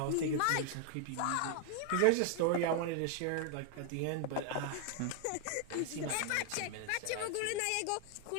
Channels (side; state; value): both; different; correlation 0.00